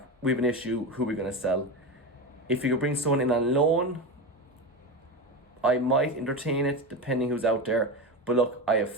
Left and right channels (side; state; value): both; normal; correlation 0.20